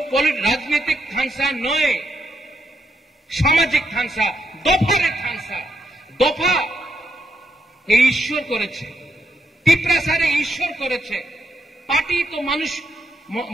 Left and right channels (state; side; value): normal; both; correlation 0.79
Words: राजनीतिक थांसा नय, सामाजिक थांसा, दफारे थांसा। दफा এই ঈশ্বর করেছে, তিপ্রাসারে ঈশ্বর করেছে। পার্টি তো